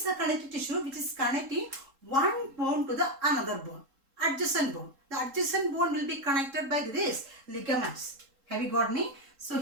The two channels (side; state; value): left; late; 3.7 ms